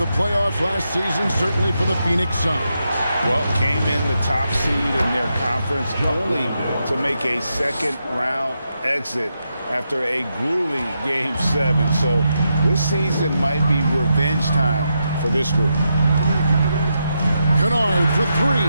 playoffs last season, certainly for the Phoenix Suns. Well, came in the top seed in their conference only to make a second-round exit after a grueling Game 7. So this season might be revenge time for this group. Kennard for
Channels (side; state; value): both; inverted; correlation -0.84